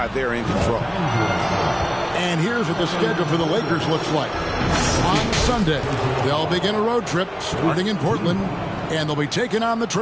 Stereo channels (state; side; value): identical; both; correlation 1.00